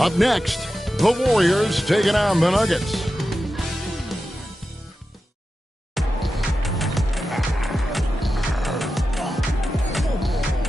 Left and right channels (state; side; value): normal; both; correlation 0.92